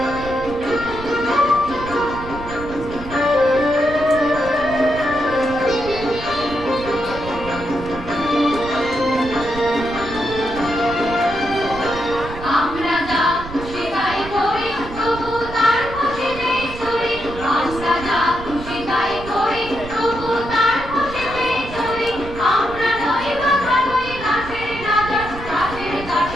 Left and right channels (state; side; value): noise; right; rumble, 12 dB below the sound